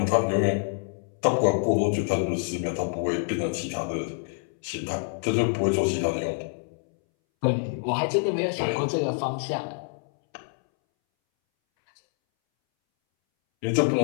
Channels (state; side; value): silent; right; 61 dB below the other